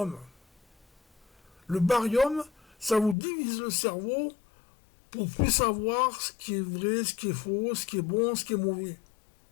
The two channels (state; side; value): drops out; right; at 3.2 s